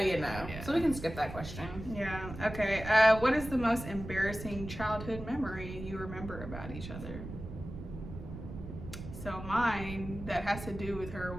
know. Yeah. So we can skip that question. Yeah. Okay. What is the most embarrassing childhood memory you remember about each other? So mine, that has to do with her,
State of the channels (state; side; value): noise; right; rumble, 10 dB below the sound